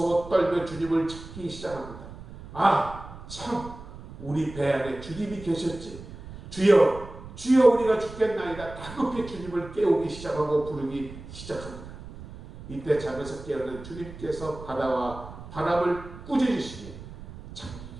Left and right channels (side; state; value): right; noise; rumble, 14 dB below the sound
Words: 떨며 주님을 찾기 시작합니다. 아, 참 우리 배 안에 주님이 계셨지. 주여, 주여 우리가 죽겠나이다. 다급히 주님을 깨우기 시작하고 부르기 시작합니다. 이때 잠에서 깨어난 주님께서 바다와 바람을 꾸짖으시니